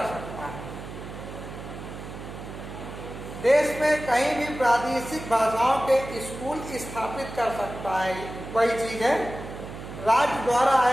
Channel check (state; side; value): noise; right; hum, 11 dB below the sound